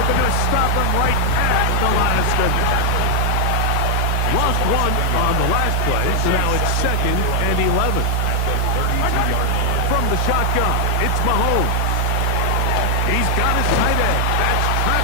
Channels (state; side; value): different; both; correlation 0.00